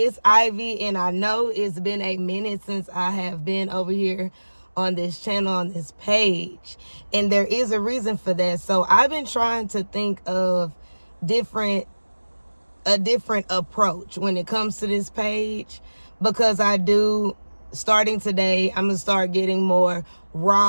Ivy, and I know it's been a minute since I have been over here on this channel, on this page. And there is a reason for that. So I've been trying to think of a different approach when it comes to this page, because starting today, I'm going to start getting more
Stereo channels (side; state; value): both; inverted; correlation -1.00